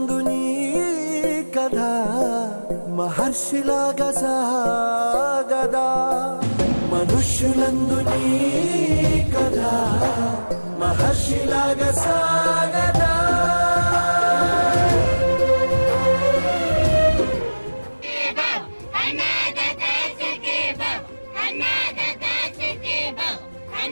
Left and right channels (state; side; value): inverted; both; correlation -1.00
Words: నీ కథ మహర్షిలాగా సాగదా. మనుష్యులందు నీ కథ మహర్షిలాగా సాగదా.